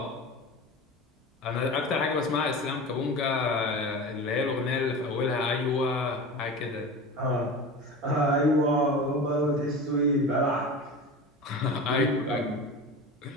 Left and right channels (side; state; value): both; normal; correlation 0.31